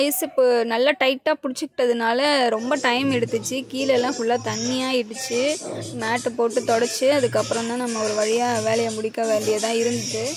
ஐஸ் இப்போ நல்லா டைட்டாக பிடிச்சிக்கிட்டதுனால ரொம்ப டைம் எடுத்துச்சு. கீழெல்லாம் ஃபுல்லாக தண்ணியாகிடுச்சு. மேட்டு போட்டு தொடச்சி அதுக்கப்புறம் தான் நம்ம ஒரு வழியாக வேலையை முடிக்க வேண்டியதாக இருந்துச்சு.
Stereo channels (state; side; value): identical; both; correlation 1.00